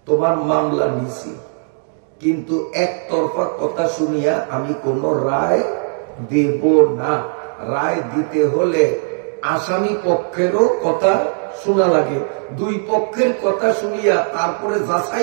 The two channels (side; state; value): left; silent; digital silence